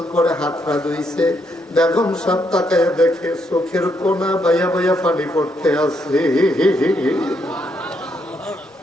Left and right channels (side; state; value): both; normal; correlation 0.76